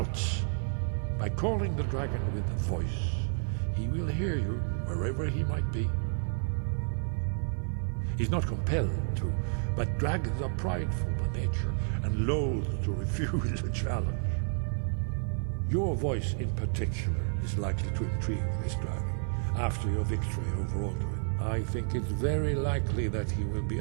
By calling the dragon with a voice, he will hear you wherever he might be. He's not compelled to, but dragons are prideful by nature and loath to refuse a challenge. Your voice in particular is likely to intrigue this dragon. after your victory over Aldrin, I think it's very likely that he will be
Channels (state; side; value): silent; left; 57 dB below the other